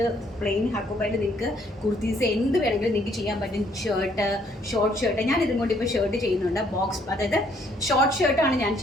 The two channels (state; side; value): normal; both; correlation 0.66